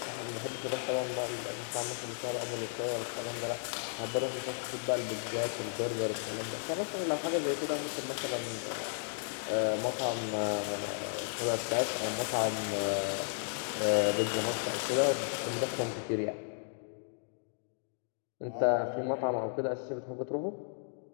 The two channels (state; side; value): silent; right; digital silence